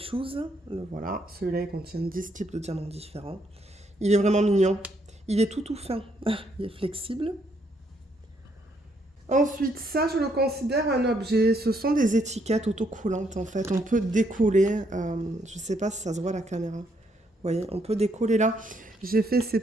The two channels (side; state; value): both; normal; correlation 0.73